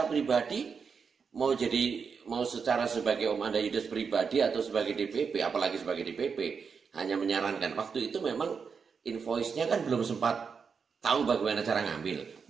pribadi mau secara sebagai Om Anda Yudas pribadi atau sebagai DPP, apalagi sebagai DPP, hanya menyarankan. Waktu itu memang invoice-nya kan belum sempat tahu bagaimana cara ngambil.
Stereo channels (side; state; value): left; quieter; 5.8 dB